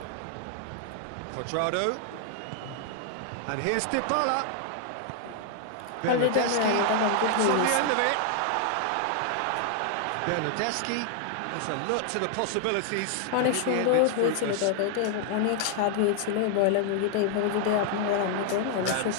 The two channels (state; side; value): different; both; correlation 0.00